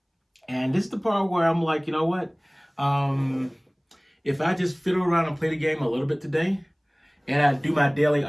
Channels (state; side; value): identical; both; correlation 1.00